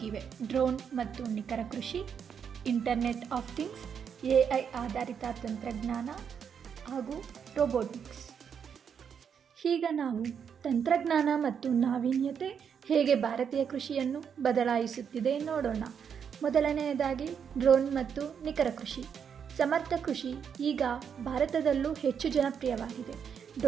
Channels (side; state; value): left; quieter; 7.4 dB